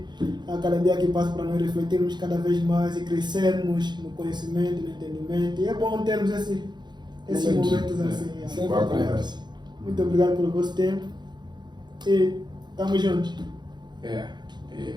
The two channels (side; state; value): left; late; 0.21 ms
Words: a cada dia que passa para nós refletirmos cada vez mais e crescermos no conhecimento, no entendimento. E é bom termos esses momentos assim. Sim. Boa conversa. Muito obrigado pelo vosso tempo e estamos juntos. É